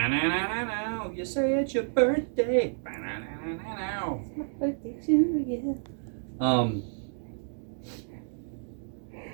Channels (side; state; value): left; silent; digital silence